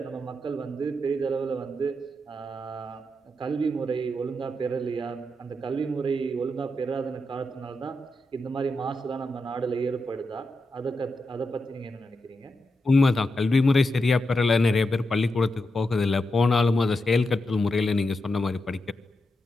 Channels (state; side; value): normal; both; correlation 0.87